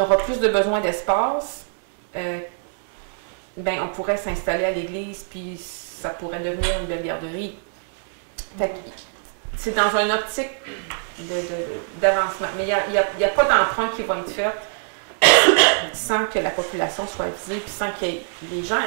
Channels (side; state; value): left; silent; 63 dB below the other